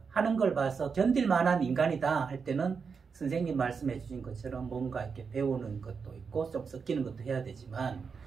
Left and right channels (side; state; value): left; quieter; 5.6 dB